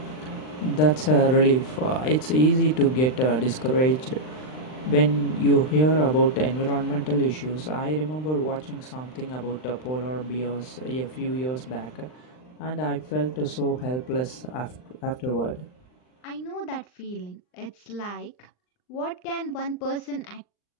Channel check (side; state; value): right; late; 39 ms